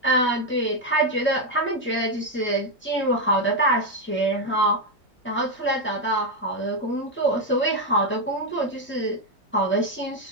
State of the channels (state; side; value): normal; both; correlation 0.05